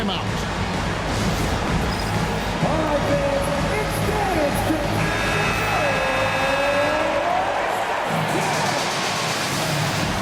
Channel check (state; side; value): identical; both; correlation 1.00